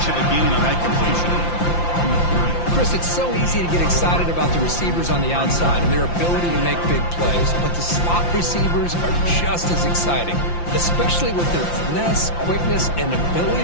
of a gain on that completion. Chris, it's so easy to get excited about the receivers on the outside and their ability to make big plays, but the slot receivers are just as exciting, especially with their finesse, quickness, and ability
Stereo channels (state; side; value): late; right; 5.8 ms